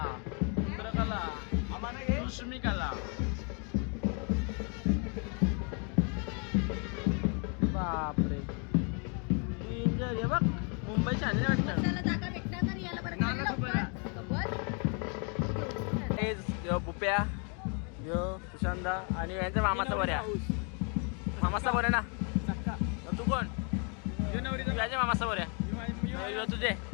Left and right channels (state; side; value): quieter; right; 37.4 dB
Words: इंद्रकला सुष्मिकला बापरे डेंजर. हे बघ मुंबईचे आणले वाटतं. बुप्या यो सुशांता आणि यांच्या मामाचा बऱ्या मामाचा बऱ्या ना तू कोण तुझ्या मामाचा बऱ्या तुझे